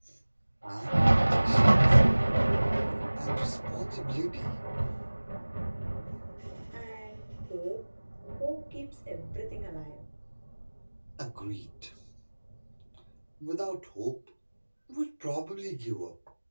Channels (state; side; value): inverted; both; correlation -1.00